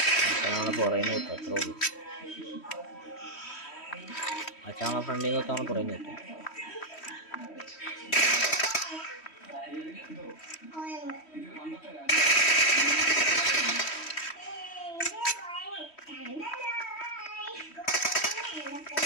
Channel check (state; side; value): late; right; 3.1 ms